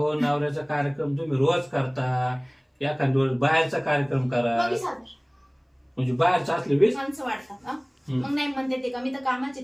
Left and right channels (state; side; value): identical; both; correlation 1.00